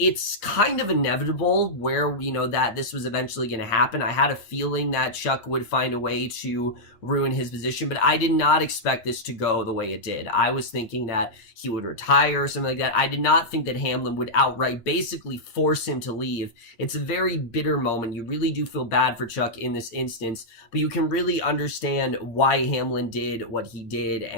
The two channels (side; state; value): right; late; 8.7 ms